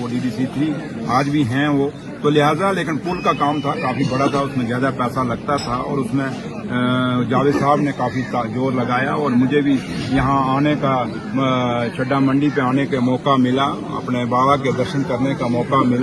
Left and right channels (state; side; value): identical; both; correlation 1.00